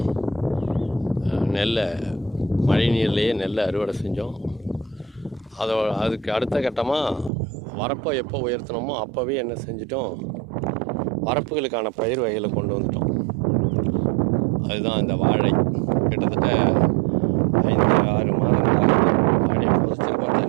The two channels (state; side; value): drops out; left; at 7.3 s